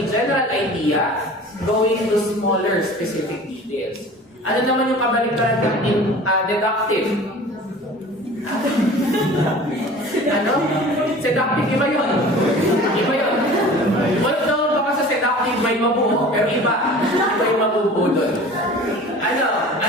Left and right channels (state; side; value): normal; both; correlation 0.42